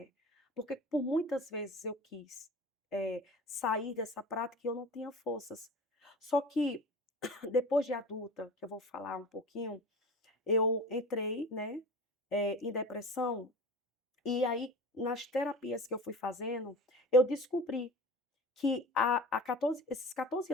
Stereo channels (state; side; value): normal; both; correlation 0.36